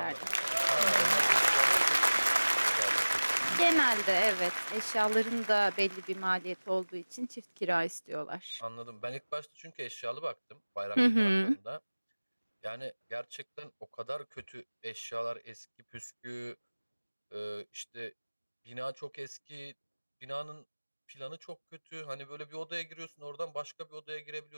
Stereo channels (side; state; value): both; inverted; correlation -1.00